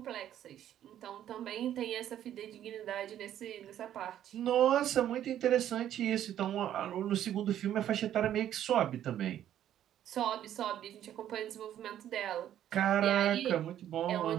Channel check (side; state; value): left; quieter; 11.1 dB